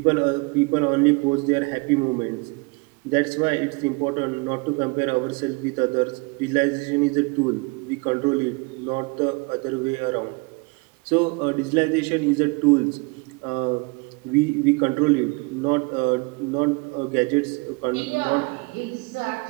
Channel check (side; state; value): left; quieter; 29.2 dB